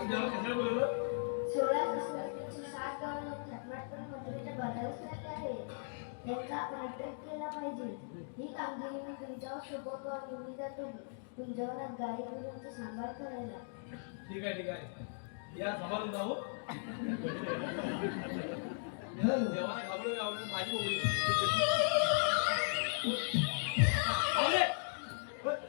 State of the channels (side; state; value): right; silent; digital silence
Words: बोलवलं 16 गावाला थटमाट करून मथुरेच्या बाजारात राहिले आहे. त्यांचा आपण अटक केला पाहिजे. ही कामगिरी मी तुमच्यावर सोपवतो आणि मी जातो तुमच्यावर गाई गुरांचा सांभाळ करायला. ठीक आहे ठीक आहे या सभारून जाऊ देवाला घाबरत घाबरत माझी बोबडी